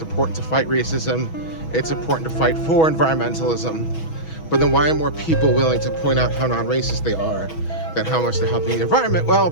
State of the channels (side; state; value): right; late; 6.2 ms